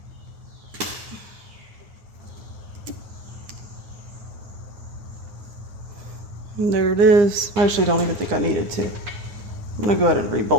And there it is. I actually don't even think I needed to. I'm gonna go ahead and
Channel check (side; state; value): left; late; 9.8 ms